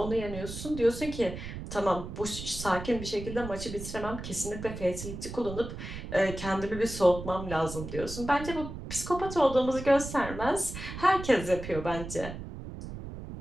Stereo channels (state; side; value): noise; right; rumble, 9 dB below the sound